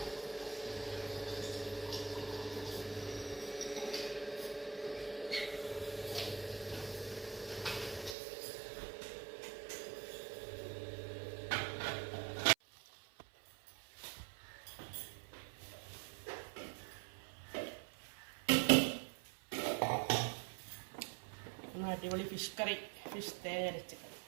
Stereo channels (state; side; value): drops out; left; at 8.2 s